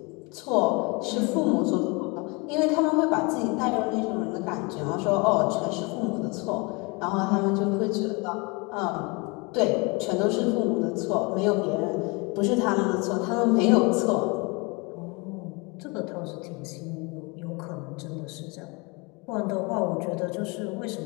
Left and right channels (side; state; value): right; quieter; 28.5 dB